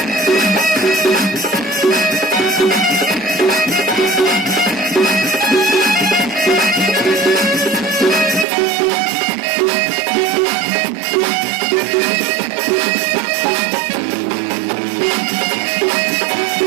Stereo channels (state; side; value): drops out; left; at 8.5 s